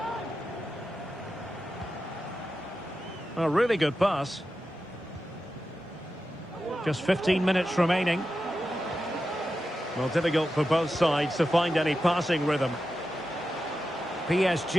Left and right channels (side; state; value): both; normal; correlation 0.91